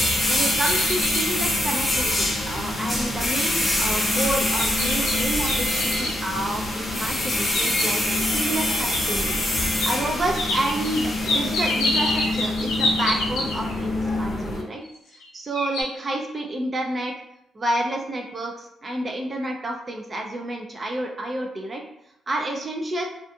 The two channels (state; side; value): normal; both; correlation 0.81